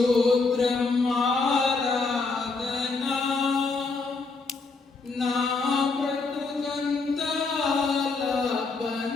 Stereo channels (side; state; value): right; quieter; 4.1 dB